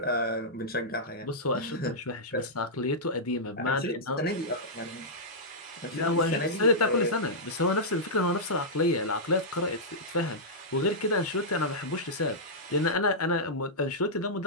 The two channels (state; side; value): normal; both; correlation -0.11